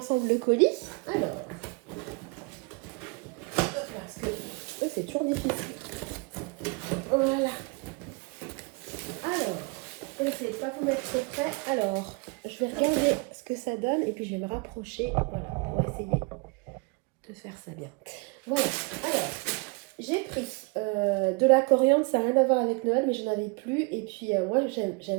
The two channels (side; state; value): left; quieter; 30.8 dB